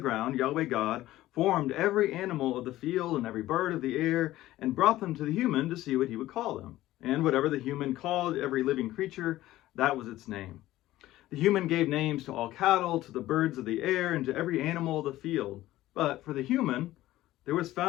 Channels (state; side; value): quieter; right; 15.6 dB